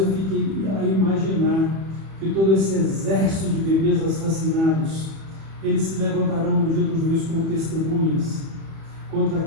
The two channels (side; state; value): left; late; 31 ms